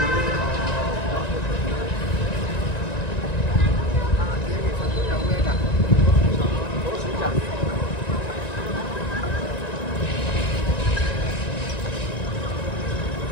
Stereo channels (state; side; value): late; right; 1.9 ms